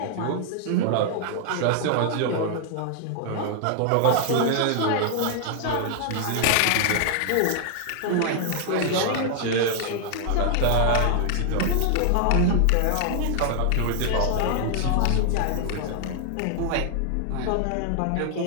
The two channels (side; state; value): both; different; correlation 0.00